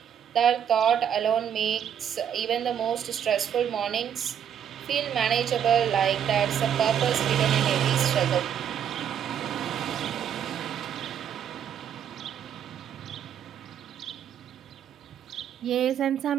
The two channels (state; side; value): quieter; left; 9.0 dB